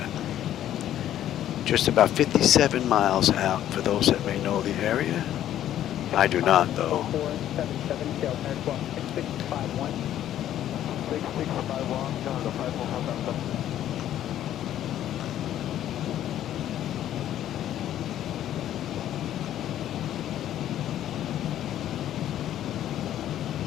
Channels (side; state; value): right; quieter; 11.7 dB